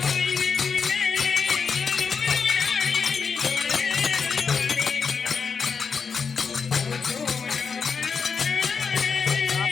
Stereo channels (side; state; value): right; quieter; 5.8 dB